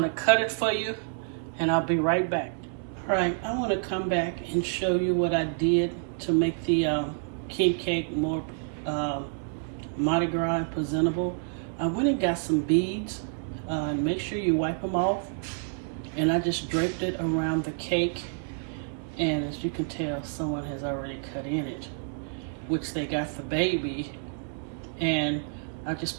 to cut it for you, and I'll be right back. All right, I want to come back and show you what I did to make the king cake more Mardi Gras and presentable. I went and got some beads, and make sure you wipe them off. And I just draped it around the cake. And as you can tell, someone has already cut in it, which they got the baby. And I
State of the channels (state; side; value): silent; left; 59 dB below the other